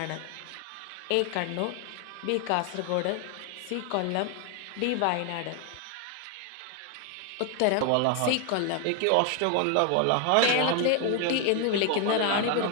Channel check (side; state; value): both; different; correlation 0.01